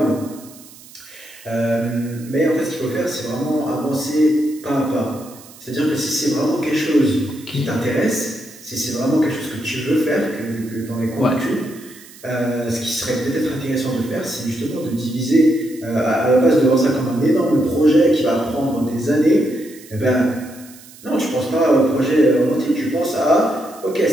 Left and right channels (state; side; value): noise; right; hiss, 21 dB below the sound